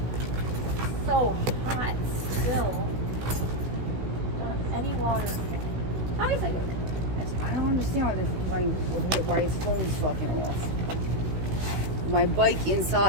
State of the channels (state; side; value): late; left; 16 ms